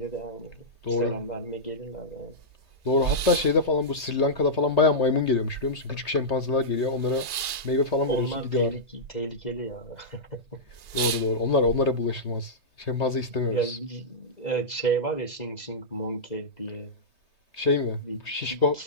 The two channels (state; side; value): late; left; 2.4 ms